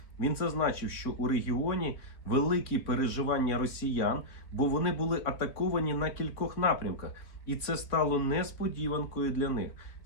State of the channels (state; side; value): late; right; 3.6 ms